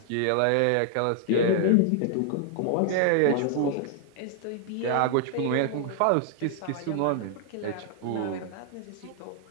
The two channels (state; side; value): different; both; correlation 0.00